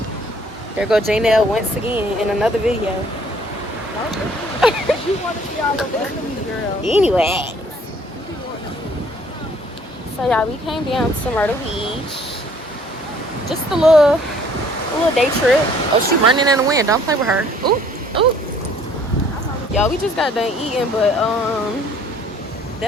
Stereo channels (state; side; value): normal; both; correlation 0.58